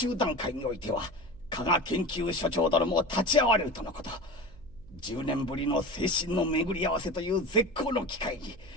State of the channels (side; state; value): right; noise; hum, 22 dB below the sound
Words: 段階においては加賀研究所長殿も立ち会われるとのこと。10年ぶりの精神の巡り合わせという絶好の機会に